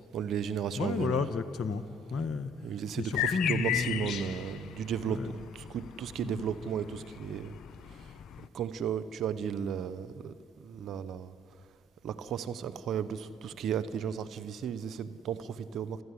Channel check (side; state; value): both; normal; correlation 0.58